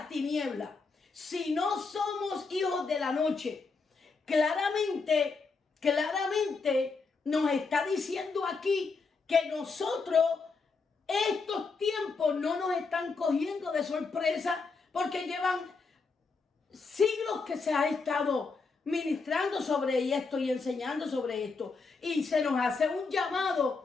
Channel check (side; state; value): right; quieter; 4.4 dB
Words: tinieblas, si no somos hijos de la noche, claramente nos está diciendo aquí que nosotros, estos tiempos no nos están cogiendo de sorpresa, porque llevan siglos que se ha estado ministrando sobre esto y enseñando sobre esto. Y se nos hace un